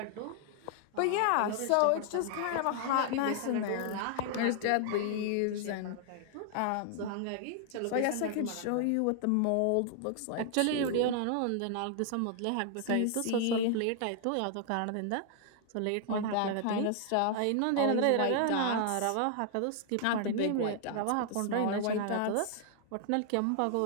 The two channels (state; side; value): different; both; correlation 0.00